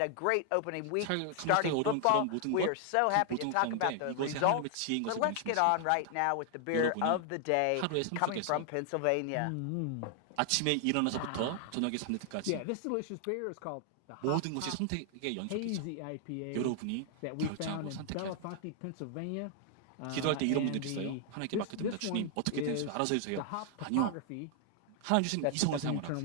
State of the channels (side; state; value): both; different; correlation 0.00